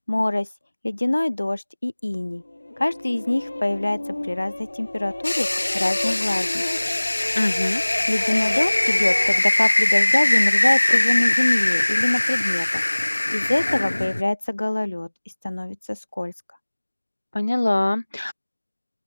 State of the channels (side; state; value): both; inverted; correlation -1.00